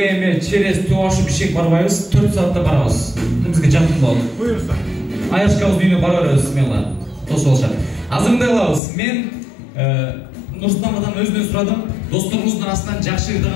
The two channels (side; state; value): right; drops out; at 8.8 s